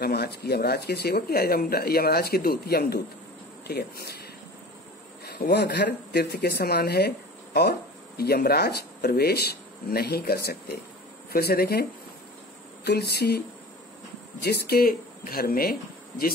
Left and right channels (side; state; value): both; normal; correlation 0.39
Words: यमराज के सेवक या यमराज के दूत, यमदूत। ठीक है, वह घर तीर्थ के समान है और यमराज प्रवेश नहीं कर सकते। फिर से देखें, तुलसी, जिसके